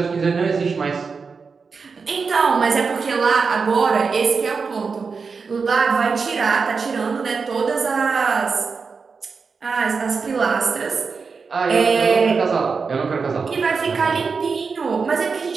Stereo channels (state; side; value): quieter; left; 5.0 dB